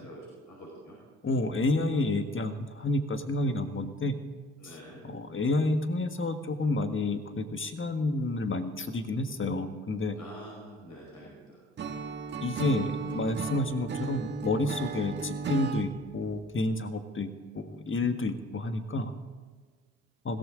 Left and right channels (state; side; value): normal; both; correlation 0.54